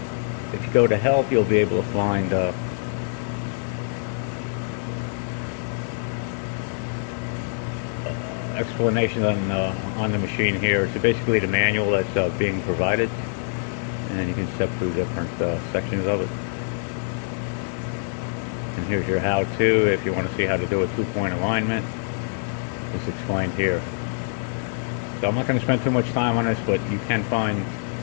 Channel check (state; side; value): silent; right; digital silence